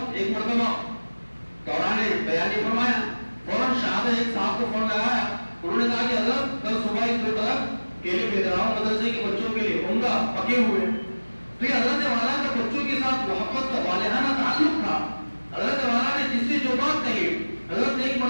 ایک مرتبہ دوران بیان نے فرمایا، فوراً شاہد ایک صاحب کو فون لگایا، انہوں نے کہا کہ حضرت کل صبح 2 طرف کیلے بھیج رہا ہوں مدرسے کے بچوں کے لیے، عمدہ پکے ہوئے۔ تو یہ حضرت والا کا بچوں کے ساتھ محبت کا والہانہ تعلق تھا۔ حضرت والا نے جس سے جو بات کہی، حضرت نے ایک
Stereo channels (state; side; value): inverted; both; correlation -1.00